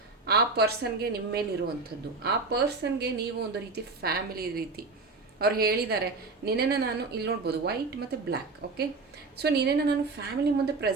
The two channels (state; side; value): quieter; left; 3.8 dB